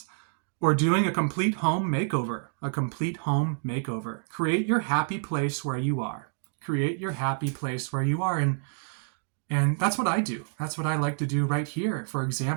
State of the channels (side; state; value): left; silent; 59 dB below the other